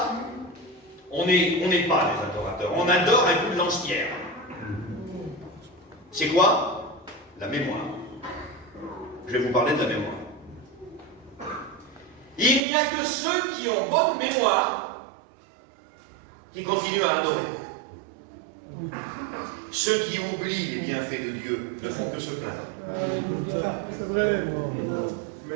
on n'est pas des adorateurs. On adore un coup de lance-pierre. C'est quoi? La mémoire. Je vais vous parler de la mémoire. Il n'y a que ceux qui ont bonne mémoire qui continuent à adorer. Ceux qui oublient les bienfaits de Dieu ne font que se plaindre. C'est vrai.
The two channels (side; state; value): left; drops out; at 12.6 s